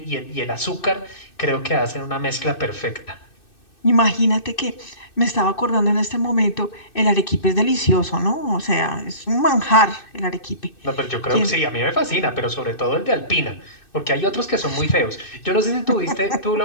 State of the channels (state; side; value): late; right; 2.6 ms